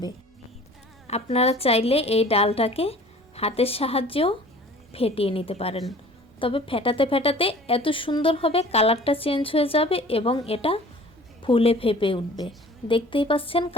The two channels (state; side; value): normal; both; correlation 0.47